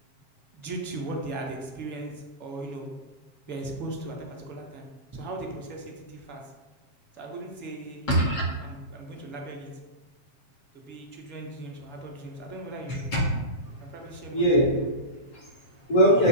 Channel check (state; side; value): late; right; 7.5 ms